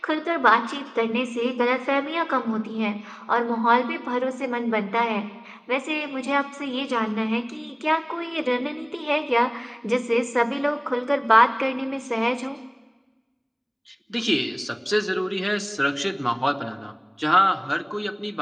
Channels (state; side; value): identical; both; correlation 1.00